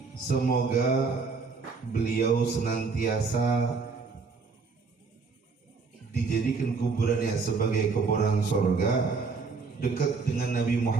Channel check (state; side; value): quieter; left; 4.6 dB